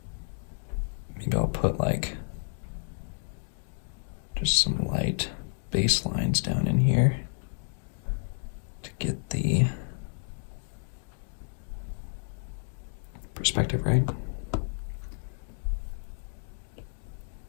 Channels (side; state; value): right; silent; 57 dB below the other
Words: maybe I'll put like just some light base lines down in here to get the perspective right.